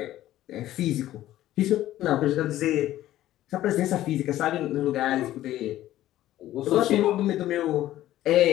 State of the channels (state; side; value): quieter; right; 14.0 dB